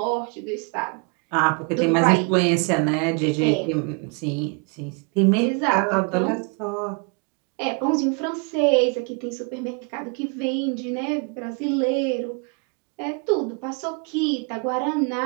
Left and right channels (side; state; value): left; quieter; 34.3 dB